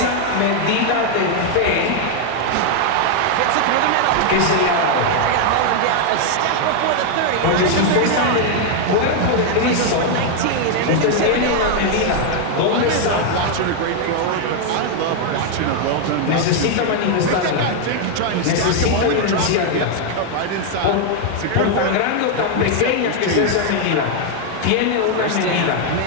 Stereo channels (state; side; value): different; both; correlation 0.00